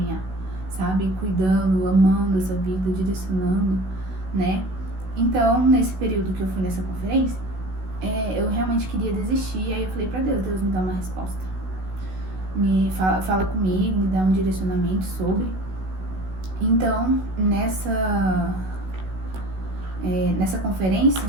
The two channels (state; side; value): late; left; 16 ms